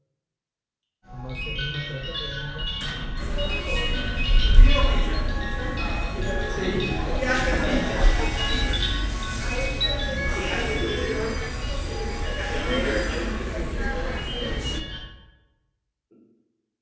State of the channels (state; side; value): identical; both; correlation 1.00